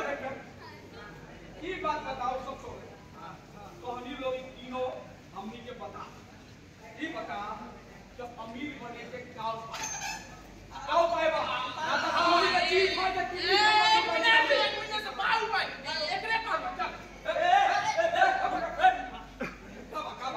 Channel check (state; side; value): identical; both; correlation 1.00